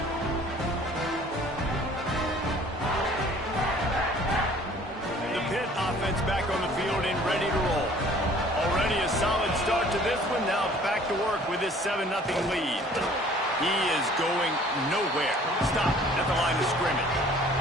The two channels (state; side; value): normal; both; correlation 0.53